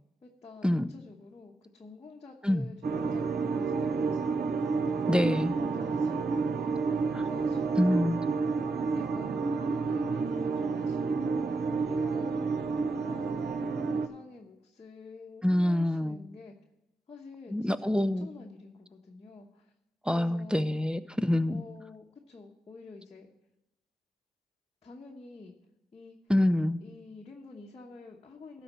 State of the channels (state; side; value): normal; both; correlation 0.88